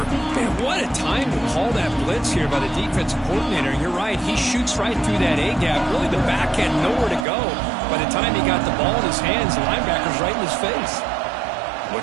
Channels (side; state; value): left; drops out; at 7.2 s